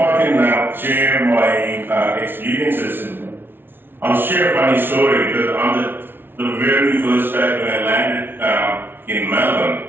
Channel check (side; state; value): left; late; 0.10 ms